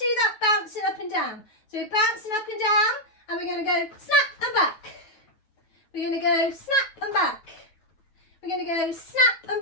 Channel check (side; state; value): right; late; 9.3 ms